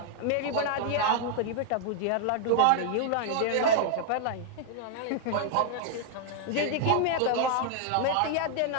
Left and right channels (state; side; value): different; both; correlation -0.01